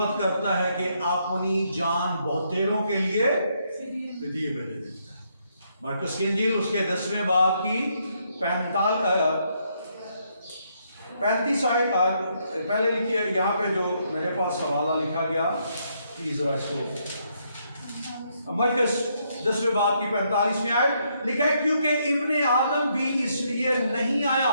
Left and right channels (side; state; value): both; inverted; correlation -0.75